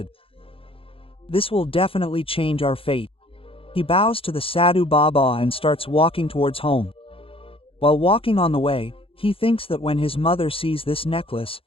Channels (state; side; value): late; right; 0.27 ms